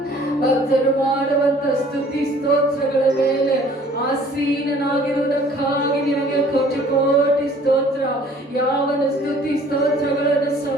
ಭಕ್ತರು ಮಾಡುವಂತ ಸ್ತುತಿ ಸ್ತೋತ್ರಗಳ ಮೇಲೆ ಆಸೀನನಾಗಿರುವುದಕ್ಕಾಗಿ ನಿನಗೆ ಕೋಟಿ ಕೋಟಿ ಸ್ತೋತ್ರ. ಯಾವನ ಸ್ತುತಿ ಸ್ತೋತ್ರಗಳನ್ನು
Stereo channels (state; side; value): normal; both; correlation 0.54